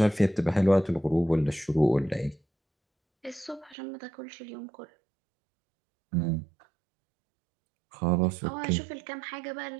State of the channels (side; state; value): left; drops out; at 3.8 s